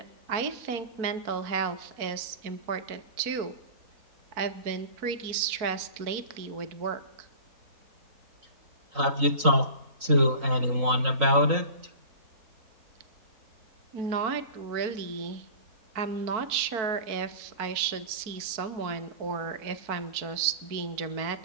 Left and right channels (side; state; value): left; late; 4.5 ms